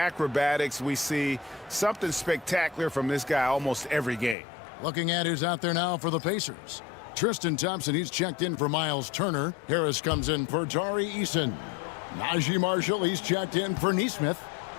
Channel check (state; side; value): drops out; right; at 4.4 s